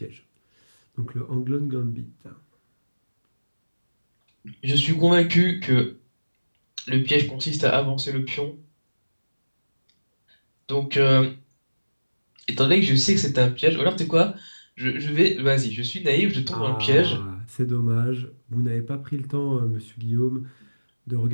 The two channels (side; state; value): both; inverted; correlation -1.00